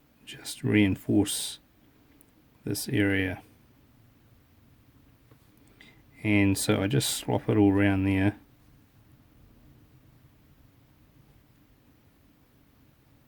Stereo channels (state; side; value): identical; both; correlation 1.00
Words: just reinforce this area. And so I just swap it all around there.